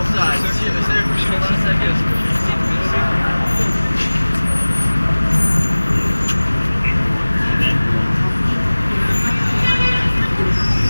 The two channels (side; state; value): both; inverted; correlation -1.00